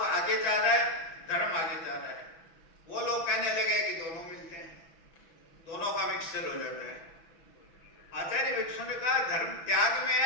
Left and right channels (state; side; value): late; right; 6.2 ms